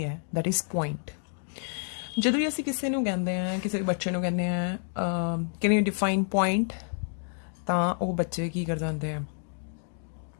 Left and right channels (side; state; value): right; silent; 57 dB below the other